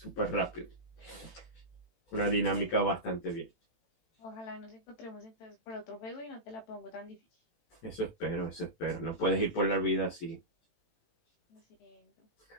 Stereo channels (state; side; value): late; right; 18 ms